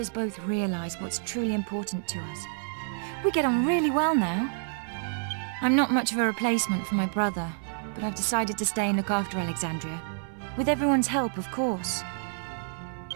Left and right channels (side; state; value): left; silent; 56 dB below the other